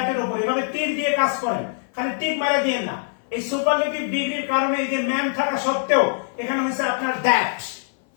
উপর, এভাবে তীর দিয়ে কাজ করেন, খালি টিক মারা দিয়েন না। এই সুপারলেটিভ ডিগ্রির কারণে এই যে ম্যান থাকা সত্ত্বেও এখানে হচ্ছে আপনার দ্যাট।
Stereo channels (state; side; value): silent; right; 59 dB below the other